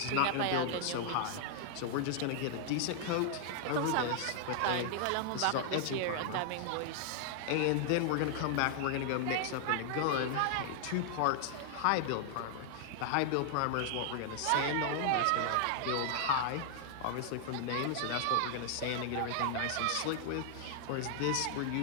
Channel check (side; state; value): both; different; correlation 0.00